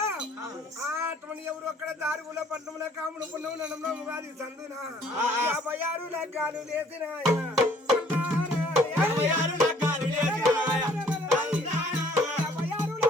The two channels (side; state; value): both; normal; correlation 0.58